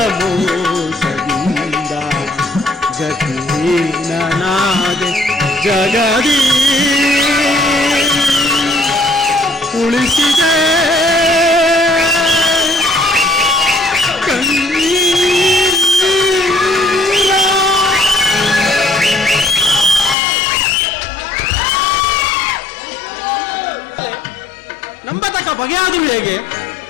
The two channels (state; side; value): drops out; right; at 20.2 s